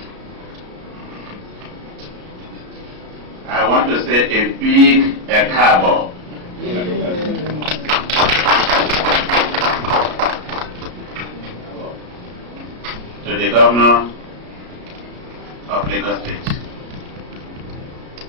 I want to say a big ekabo to the Governor of Lagos State.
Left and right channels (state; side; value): late; left; 33 ms